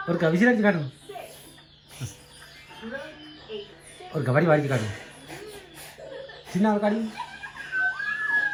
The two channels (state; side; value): identical; both; correlation 1.00